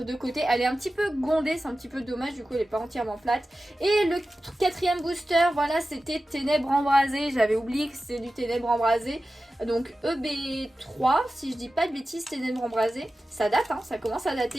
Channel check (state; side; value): normal; both; correlation 0.94